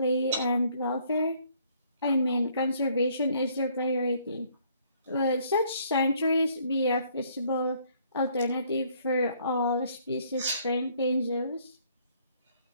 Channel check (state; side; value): inverted; both; correlation -0.64